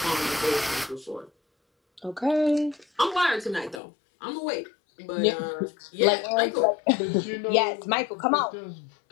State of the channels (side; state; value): right; drops out; at 3.8 s